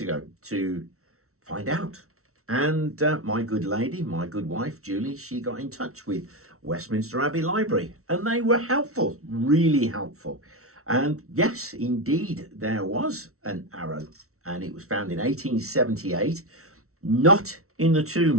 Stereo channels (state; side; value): late; left; 0.63 ms